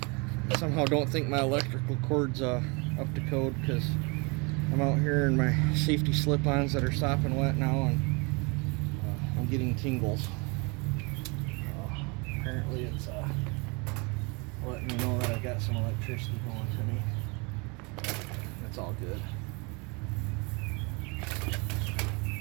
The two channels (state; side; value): quieter; left; 30.0 dB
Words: Somehow don't think my electrical cord's up to code because I'm out here in my safety slip-ons that are sopping wet now, and I'm getting tingles. Apparently it's letting me know that I got some electricity going to me. That's all good.